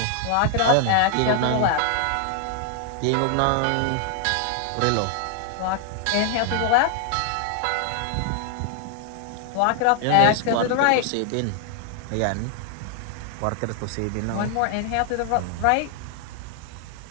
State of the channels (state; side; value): different; both; correlation 0.00